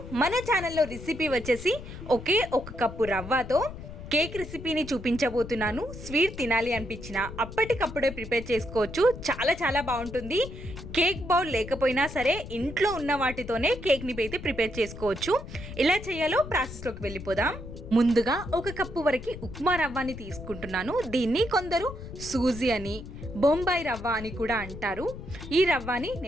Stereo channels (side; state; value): left; noise; rumble, 12 dB below the sound